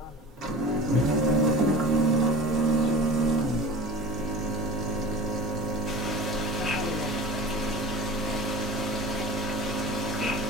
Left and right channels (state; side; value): normal; both; correlation 0.37